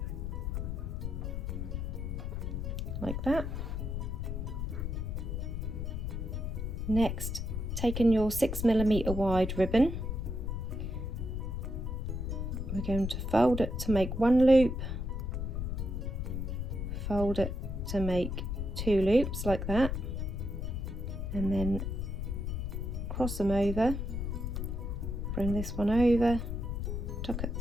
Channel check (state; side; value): noise; left; rumble, 3 dB below the sound